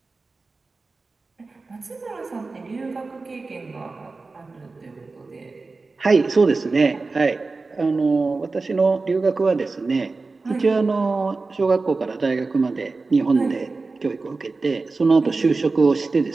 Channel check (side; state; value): left; quieter; 3.8 dB